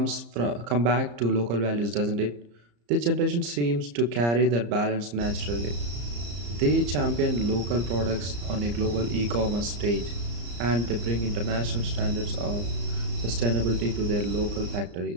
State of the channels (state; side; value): late; left; 34 ms